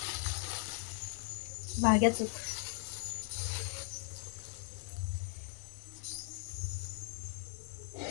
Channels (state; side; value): silent; right; digital silence